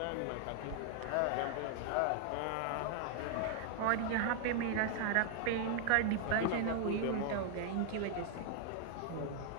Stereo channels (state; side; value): different; both; correlation 0.00